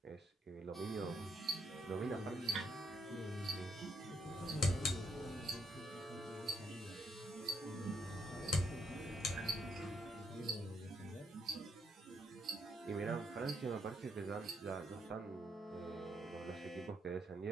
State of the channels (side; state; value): both; normal; correlation 0.76